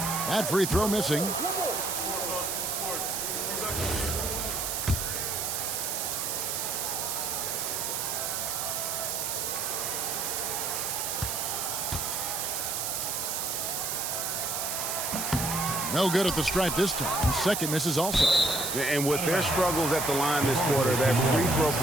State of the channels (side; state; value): right; noise; hiss, 1 dB below the sound